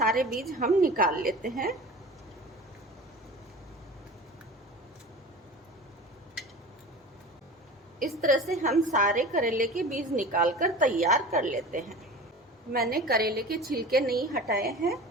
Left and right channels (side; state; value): both; normal; correlation 0.36